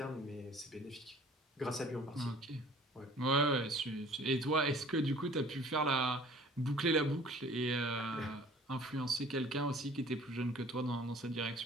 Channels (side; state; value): both; normal; correlation 0.50